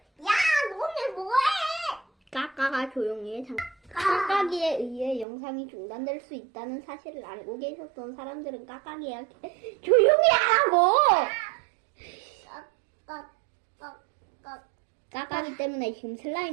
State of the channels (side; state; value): left; drops out; at 5.2 s